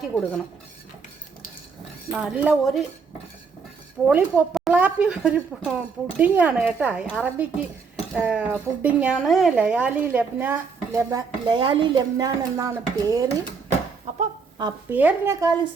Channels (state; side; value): quieter; left; 5.2 dB